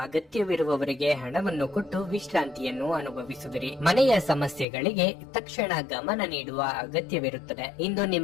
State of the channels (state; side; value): drops out; right; at 4.7 s